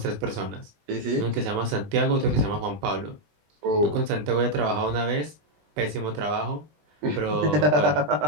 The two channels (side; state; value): left; late; 20 ms